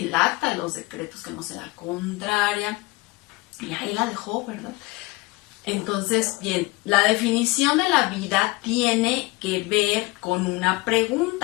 acta de los decretos que nos era contraria, y ahí la dejó, ¿verdad? Entonces, bien, la definición de la vida tiene que ver con una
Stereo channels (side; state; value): right; quieter; 22.5 dB